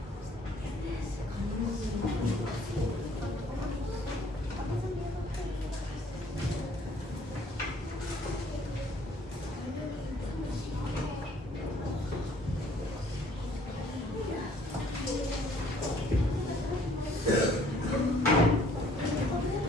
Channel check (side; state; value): both; normal; correlation 0.59